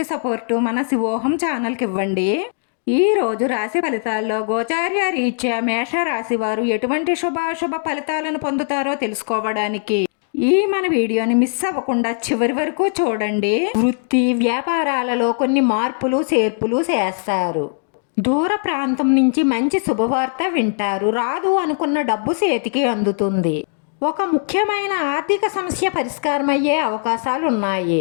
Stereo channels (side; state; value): right; silent; digital silence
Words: సపోర్టు మన శివోహం ఛానల్కి ఇవ్వండి. ఈ రోజు రాశి ఫలితాల్లో గోచార్య రీత్యా మేష రాశి వారు ఎటువంటి శుభాశుభ ఫలితాలను పొందుతారో తెలుసుకోవడానికి ఈ మన వీడియోని మిస్ అవ్వకుండా చివరి వరకు చూడండి. వృత్తి వ్యాపారాలలో కొన్ని మార్పులు చేర్పులు చేస్తారు. దూర ప్రాంతం నుంచి మంచి శుభవార్త వింటారు. రాదు అనుకున్న డబ్బు చేతికి అందుతుంది. ఒక ముఖ్యమైన ఆర్థిక సమస్య పరిష్కారమయ్యే అవకాశాలు